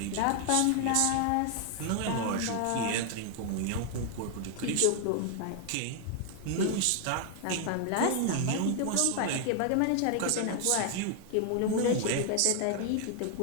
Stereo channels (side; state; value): both; different; correlation 0.00